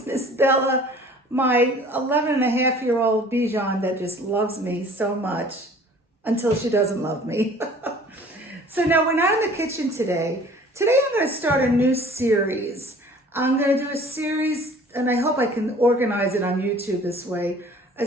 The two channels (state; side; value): normal; both; correlation 0.49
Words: Miss Bella, my 11-and-a-half-year-old Bichon that just loves me so much until she doesn't love me. So now we're not in the kitchen today. Today I'm going to start a new series. I'm going to do a series, and I hope I can organize it on YouTube this way, a